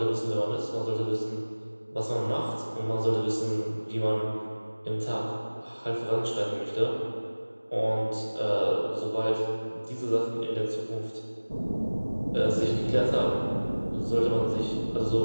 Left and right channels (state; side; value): inverted; both; correlation -1.00